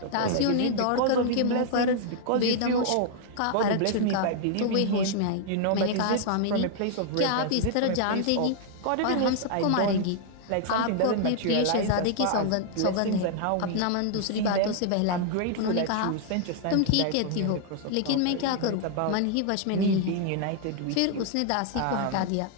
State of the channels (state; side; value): different; both; correlation -0.01